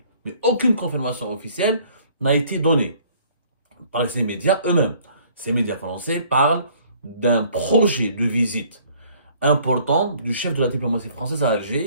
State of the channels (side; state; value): both; inverted; correlation -0.57